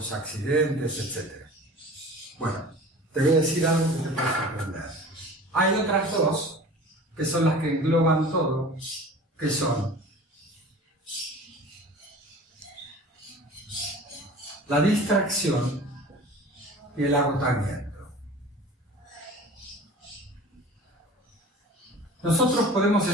accidentes, etc. Bueno, te voy a decir algo que te puede sorprender. Hay otras dos, que son las que engloban todo, que son la distracción y el agotamiento. Nosotros podemos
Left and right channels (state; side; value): normal; both; correlation 0.41